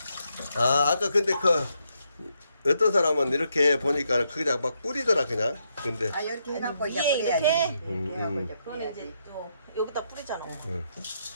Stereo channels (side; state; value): both; inverted; correlation -0.78